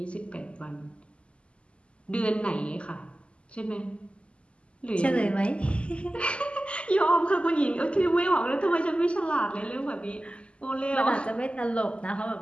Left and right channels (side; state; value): right; late; 0.055 ms